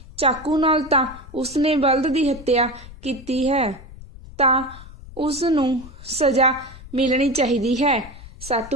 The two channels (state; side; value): noise; left; rumble, 17 dB below the sound